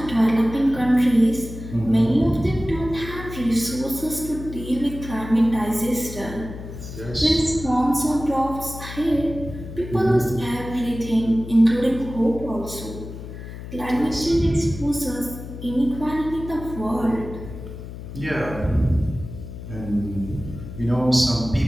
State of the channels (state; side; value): noise; left; hum, 11 dB below the sound